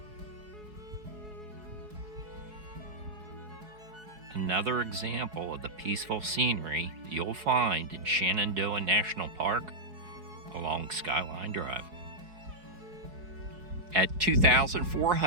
Another example of the peaceful scenery you'll find in Shenandoah National Park along Skyline Drive. At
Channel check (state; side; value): late; left; 4.7 ms